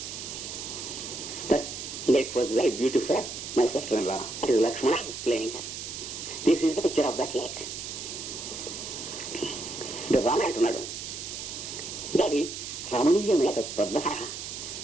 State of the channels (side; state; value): right; noise; hiss, 7 dB below the sound